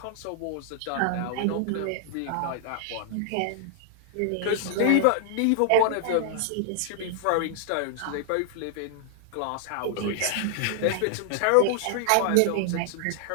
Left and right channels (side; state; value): both; different; correlation -0.01